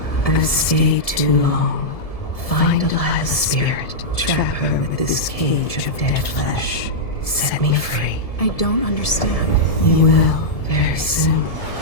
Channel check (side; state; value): right; late; 1.7 ms